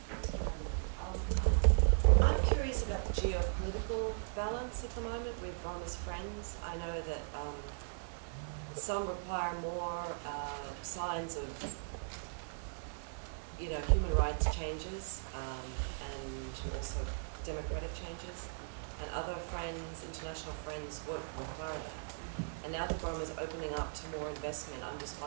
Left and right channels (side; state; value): left; silent; digital silence